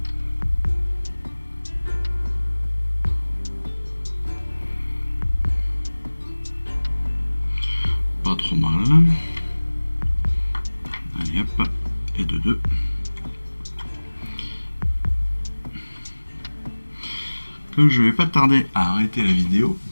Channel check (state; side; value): inverted; both; correlation -1.00